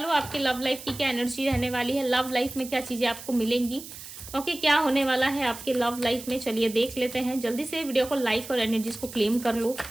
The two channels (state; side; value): noise; right; hiss, 14 dB below the sound